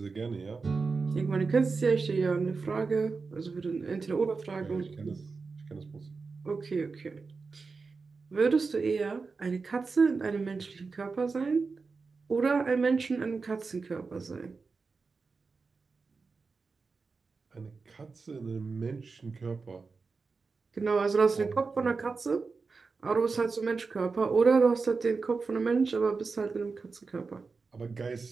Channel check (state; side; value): quieter; left; 4.5 dB